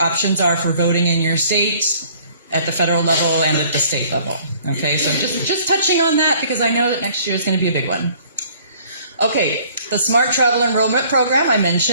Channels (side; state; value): both; inverted; correlation -0.57